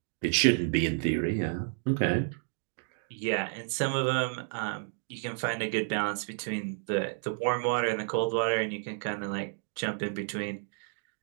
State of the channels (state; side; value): silent; left; 57 dB below the other